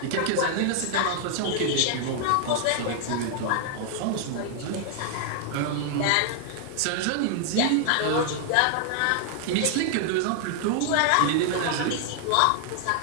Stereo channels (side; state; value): both; different; correlation 0.00